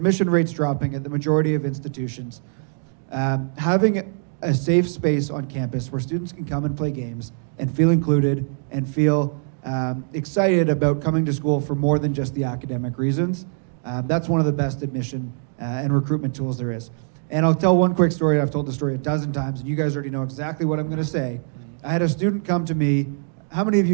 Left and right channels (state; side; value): silent; left; 64 dB below the other